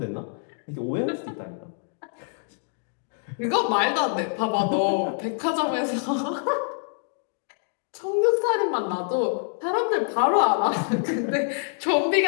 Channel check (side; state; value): right; silent; 61 dB below the other